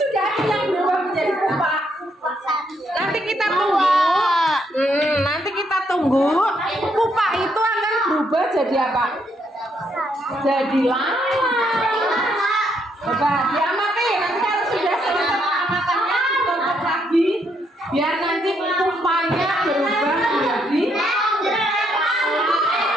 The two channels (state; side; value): normal; both; correlation 0.74